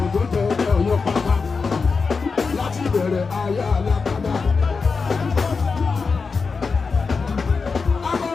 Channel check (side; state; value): right; quieter; 4.8 dB